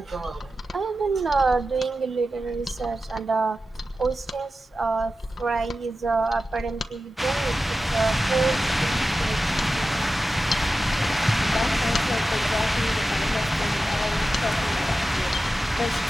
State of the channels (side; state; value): both; normal; correlation 0.93